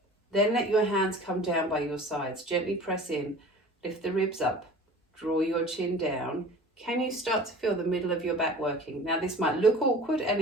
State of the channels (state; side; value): normal; both; correlation 0.42